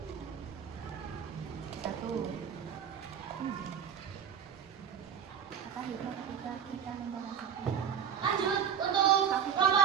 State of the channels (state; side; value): quieter; left; 8.2 dB